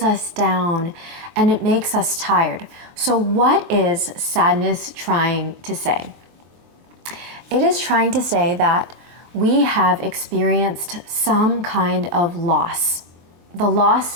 us down and it makes us tired. So what is sadness trying to say? It is trying to say that we have experienced some kind of loss. The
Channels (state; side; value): late; left; 23 ms